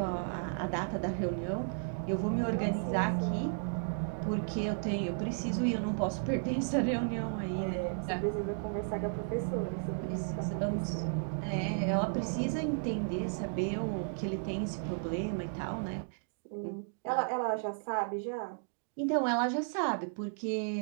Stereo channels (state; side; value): silent; left; digital silence